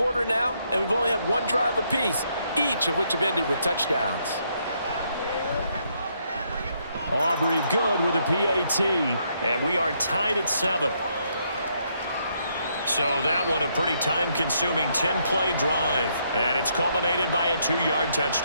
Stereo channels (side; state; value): both; inverted; correlation -0.74